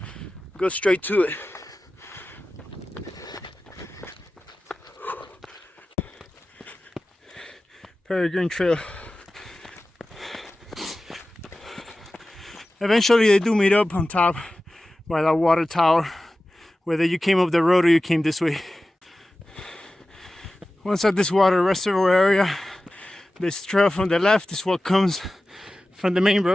Go straight to it. Peregrine Trail. Eventually they do meet up on top by that water tower, whether you came up the road or you came this way. Once at this water reservoir area, this trail from the left is what comes from the main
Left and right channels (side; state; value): both; normal; correlation 0.95